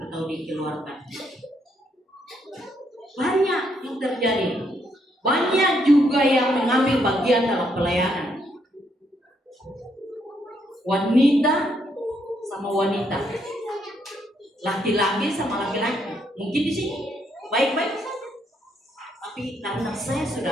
atau dikeluarkan. Banyak yang terjadi. Banyak juga yang mengambil bagian dalam pelayanan. Wanita sama wanita, laki-laki sama laki-laki. Mungkin di sini baik-baik saja, tapi karena saya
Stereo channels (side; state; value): both; normal; correlation 0.74